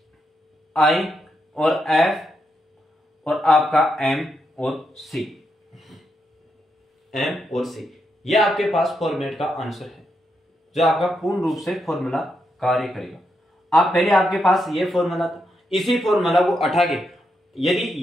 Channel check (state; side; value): normal; both; correlation 0.82